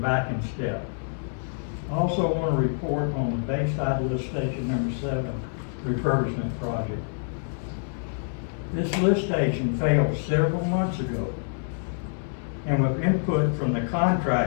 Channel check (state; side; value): silent; right; digital silence